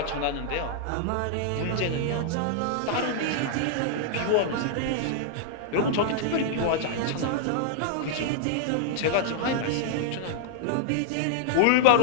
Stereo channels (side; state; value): both; different; correlation -0.01